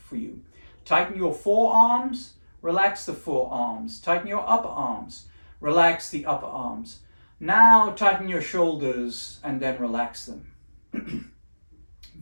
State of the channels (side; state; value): both; inverted; correlation -1.00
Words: for you. Tighten your forearms, relax the forearms. Tighten your upper arms, relax the upper arms. Now tighten your shoulders and then relax them.